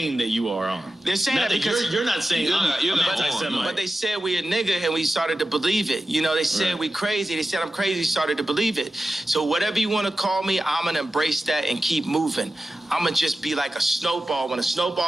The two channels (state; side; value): normal; both; correlation 0.93